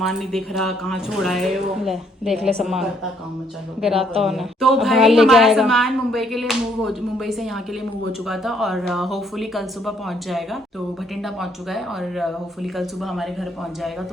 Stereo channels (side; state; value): both; normal; correlation 0.68